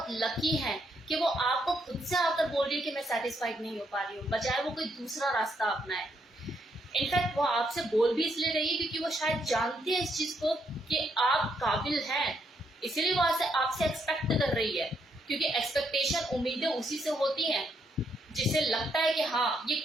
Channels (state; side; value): normal; both; correlation 0.76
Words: लकी हैं कि वो आपको खुद से आकर बोल रही है कि मैं सेटिस्फाइड नहीं हो पा रही हूँ, बजाय वो कोई दूसरा रास्ता अपनाए। इनफैक्ट वो आपसे बोल भी इसलिए रही है क्योंकि वो शायद जानती है इस चीज को कि आप काबिल हैं, इसीलिए वो आपसे एक्सपेक्ट कर रही है। क्योंकि एक्सपेक्टेशन, उम्मीदें उसी से होती हैं जिसे लगता है कि हाँ ये